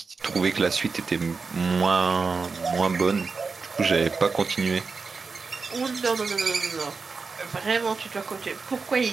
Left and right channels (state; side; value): quieter; left; 4.6 dB